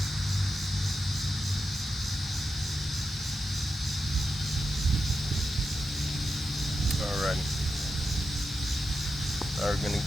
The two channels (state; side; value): normal; both; correlation 0.89